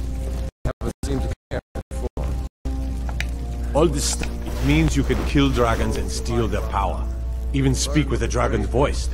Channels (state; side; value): identical; both; correlation 1.00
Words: They haven't seemed to care before. All this stuff, it means you can kill dragons and steal their power. Even speak with a dragon's voice,